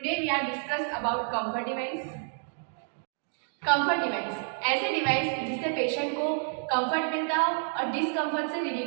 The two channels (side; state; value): left; silent; 58 dB below the other